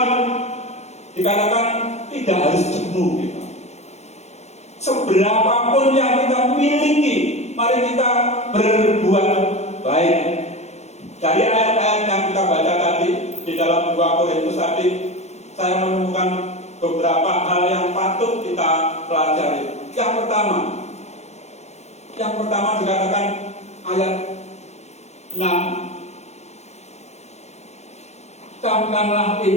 dikatakan tidak harus jemu kita. Seberapapun yang kita miliki, mari kita berbuat baik. Dari ayat-ayat yang kita baca tadi di dalam 2 Korintus tadi, saya menemukan beberapa hal yang patut kita pelajari. Yang pertama dikatakan ayat 6, camkanlah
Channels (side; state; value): right; late; 0.32 ms